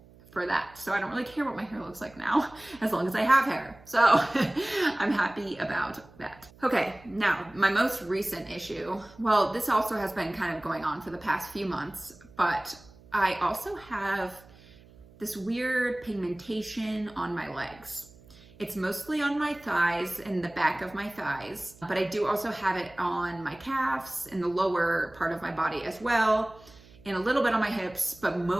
for that. So I don't really care what my hair looks like now, as long as I have hair. So I'm happy about that. Okay, now my most recent issue, well, this also has been kind of going on for the past few months, but I also have this weird pigmentation on my legs. It's mostly on my thighs and the back of my thighs, but I do also have it on my calves and the lower part of my body as well, and a little bit on my hips, but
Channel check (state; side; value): noise; right; hum, 24 dB below the sound